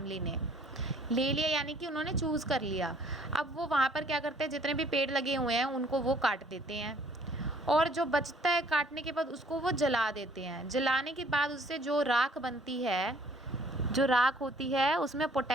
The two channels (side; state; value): both; normal; correlation 0.59